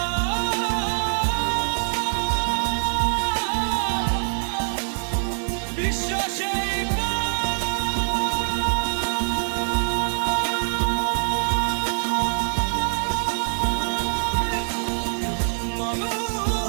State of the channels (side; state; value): left; silent; digital silence